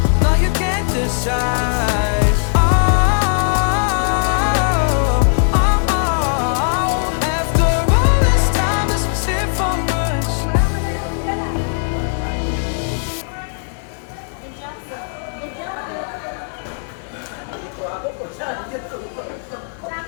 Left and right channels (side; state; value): right; silent; digital silence